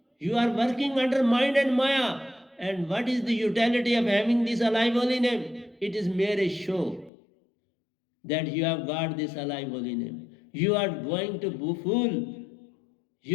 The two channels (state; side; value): drops out; right; at 7.1 s